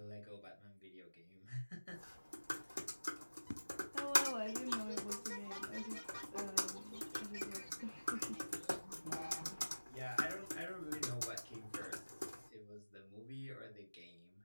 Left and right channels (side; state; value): both; inverted; correlation -1.00